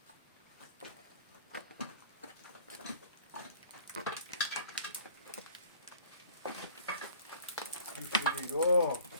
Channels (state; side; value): inverted; both; correlation -0.51